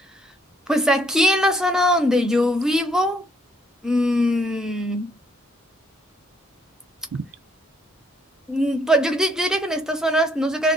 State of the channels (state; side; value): normal; both; correlation 0.67